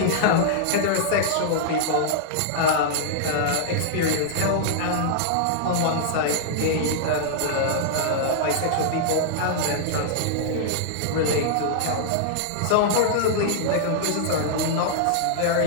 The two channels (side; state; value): both; different; correlation -0.01